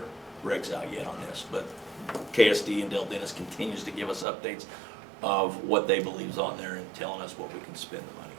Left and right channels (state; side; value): drops out; left; at 4.2 s